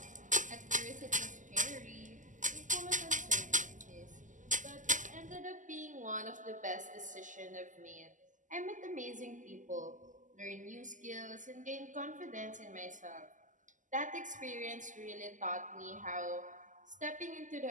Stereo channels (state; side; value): late; left; 0.37 ms